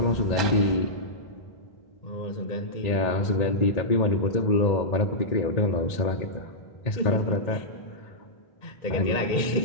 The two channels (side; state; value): right; late; 2.0 ms